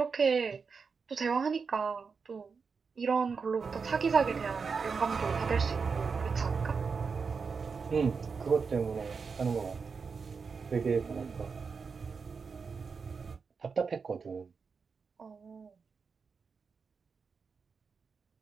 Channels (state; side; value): quieter; left; 5.3 dB